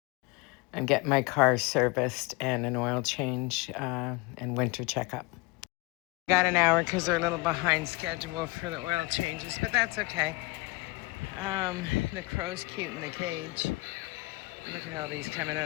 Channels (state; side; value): quieter; right; 24.1 dB